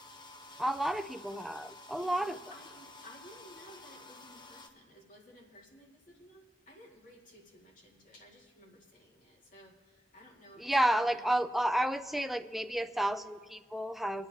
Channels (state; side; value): normal; both; correlation 0.92